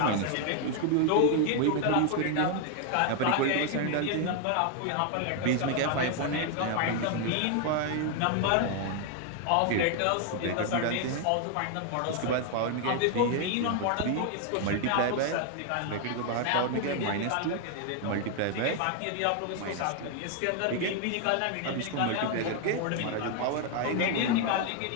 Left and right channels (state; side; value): different; both; correlation 0.00